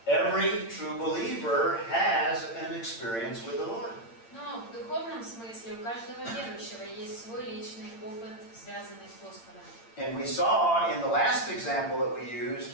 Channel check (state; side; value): late; right; 8.8 ms